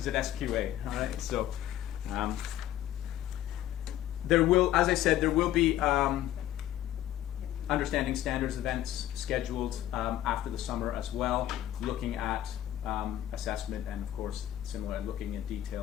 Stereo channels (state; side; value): quieter; right; 12.8 dB